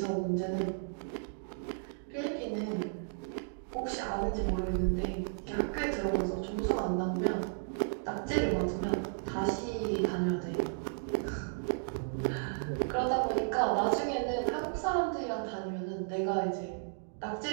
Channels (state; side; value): silent; left; digital silence